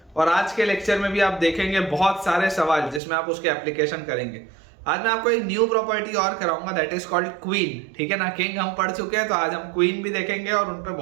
और आज के लेक्चर में भी आप देखेंगे बहुत सारे सवाल जिसमें आप उसके एप्लीकेशन करेंगे। आज मैं आपको एक न्यू प्रॉपर्टी और कराऊंगा, दैट इज कॉल्ड क्वीन। ठीक है ना, किंग हम पढ़ चुके हैं तो आज हम क्वीन भी देखेंगे और उन पर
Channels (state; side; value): drops out; left; at 3.0 s